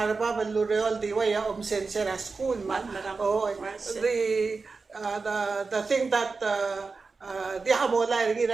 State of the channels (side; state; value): left; quieter; 4.3 dB